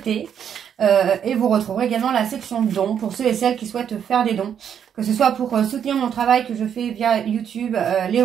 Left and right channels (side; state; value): left; quieter; 8.5 dB